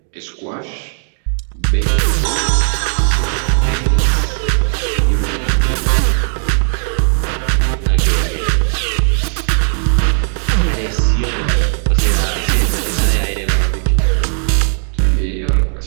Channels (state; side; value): silent; left; 58 dB below the other